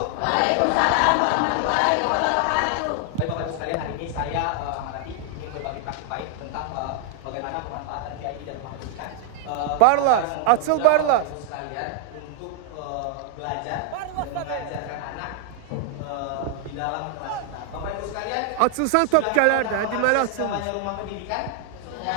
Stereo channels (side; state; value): both; different; correlation 0.00